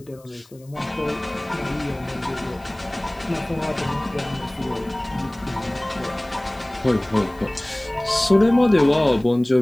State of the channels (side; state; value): left; noise; hiss, 28 dB below the sound